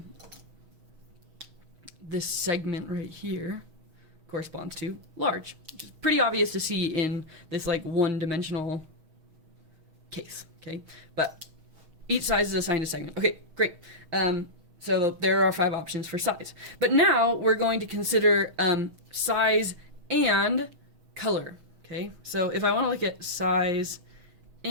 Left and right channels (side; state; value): left; late; 6.3 ms